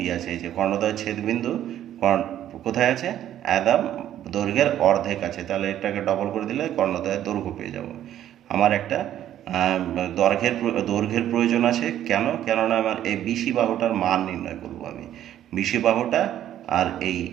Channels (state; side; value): quieter; left; 11.6 dB